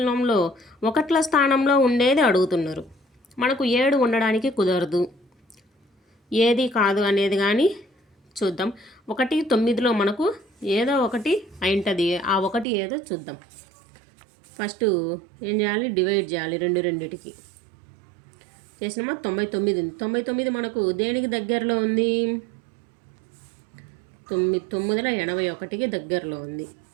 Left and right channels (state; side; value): drops out; left; at 12.7 s